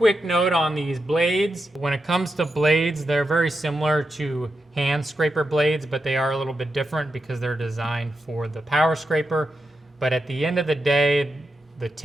note on these blades. When it comes to blades, they're very similar to hand scraper blades, but they are a little bit different because they're designed for the power scraper. But at the end of the day, the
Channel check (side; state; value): both; normal; correlation 0.87